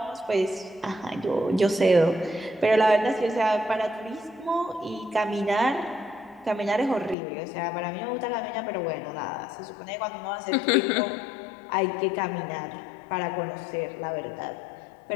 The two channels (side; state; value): right; drops out; at 7.2 s